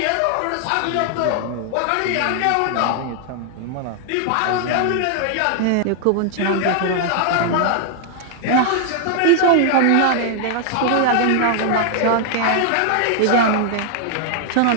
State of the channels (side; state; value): both; different; correlation 0.00